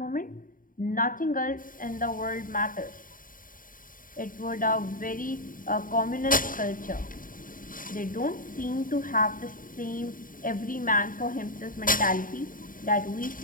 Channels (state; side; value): late; right; 0.40 ms